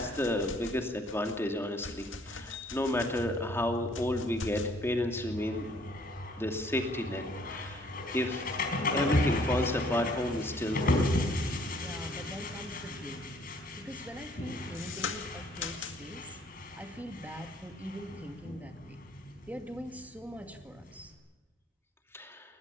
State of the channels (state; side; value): normal; both; correlation 0.61